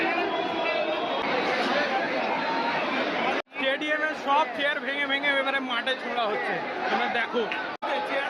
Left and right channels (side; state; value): both; identical; correlation 1.00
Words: স্টেডিয়ামের সব চেয়ার ভেঙে ভেঙে এবারে মাঠে ছোড়া হচ্ছে, তোমরা দেখো